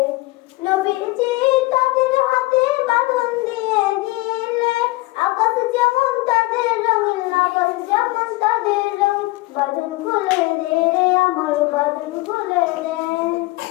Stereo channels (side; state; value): right; quieter; 21.3 dB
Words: নবীজি তাদের হাতে বাঁধন দিয়ে দিলে, আকাশ যেমন তাদের রঙিন, আকাশ যেমন তাদের রঙ। বাঁধন খুলে দে রে আমার বাঁধন খুলে দে,